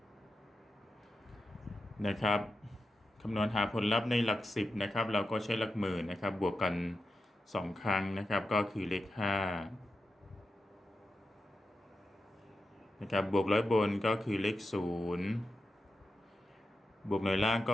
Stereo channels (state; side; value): normal; both; correlation 0.89